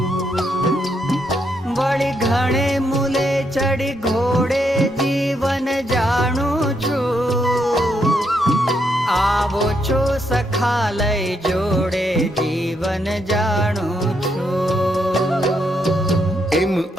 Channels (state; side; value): normal; both; correlation 0.77